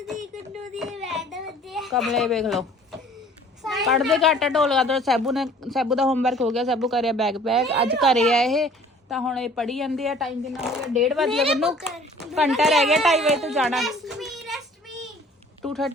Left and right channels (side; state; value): both; normal; correlation 0.51